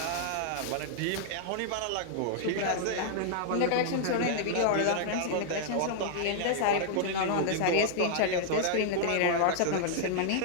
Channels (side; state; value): both; different; correlation -0.01